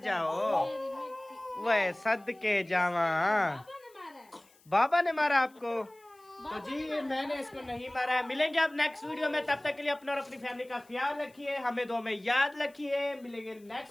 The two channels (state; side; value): noise; left; hiss, 30 dB below the sound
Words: वह सदके जावा, बाबा ने मारा आपको? तो जी मैंने इसको नहीं मारा है। मिलेंगे अब नेक्स्ट वीडियो में, तब तक के लिए अपना और अपनी फैमिली का ख्याल रखिए, हमें दो में याद रखिए। मिलेंगे